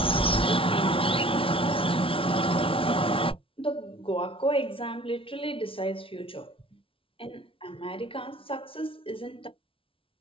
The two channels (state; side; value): late; right; 0.26 ms